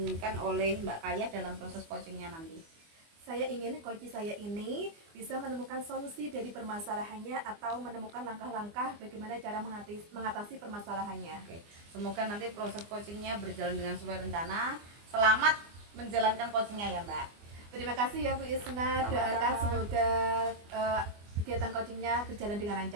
oleh Mbak Kaya dalam proses coachingnya nanti? Saya ingin coach saya ini bisa menemukan solusi dari permasalahannya atau menemukan langkah-langkah bagaimana cara mengatasi permasalahannya. Oke, semoga nanti proses coachingnya berjalan dengan sesuai rencana. Selamat menjalankan coachingnya ya Mbak. Terima kasih ya Bu Isna, doakan semoga kegiatan coachingnya berjalan dengan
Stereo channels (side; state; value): left; late; 24 ms